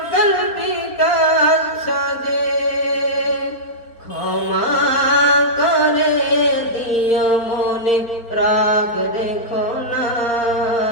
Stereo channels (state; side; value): late; right; 4.3 ms